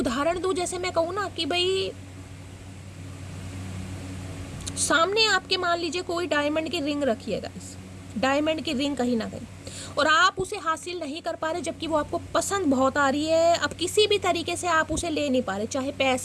दूं, जैसे मैं कहूँ ना कि भाई सामने आपके मान लीजिए कोई डायमंड की रिंग रखी है गाइस, डायमंड की रिंग कहीं ना कहीं, और आप उसे हासिल नहीं कर पा रहे, जबकि वो आपको पसंद बहुत आ रही है। अब किसी भी तरीके से आप उसे ले नहीं पा रहे, चाहे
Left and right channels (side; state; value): both; identical; correlation 1.00